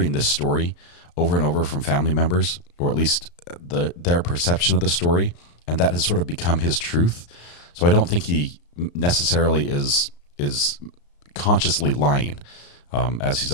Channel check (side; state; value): right; late; 34 ms